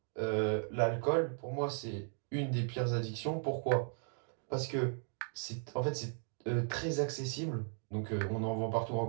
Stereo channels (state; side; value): silent; left; 53 dB below the other